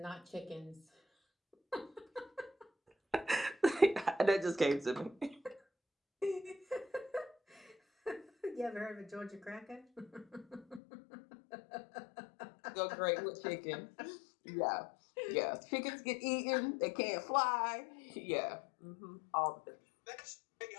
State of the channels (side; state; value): right; drops out; at 10.8 s